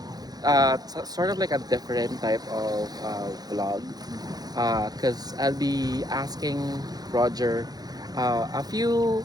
sort of like a different type of vlog because I'll be asking Roger a few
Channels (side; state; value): left; late; 0.19 ms